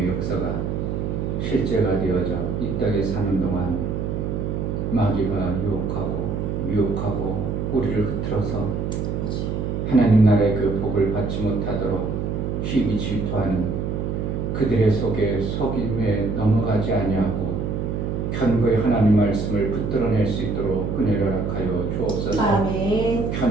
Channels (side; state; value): right; noise; hum, 2 dB below the sound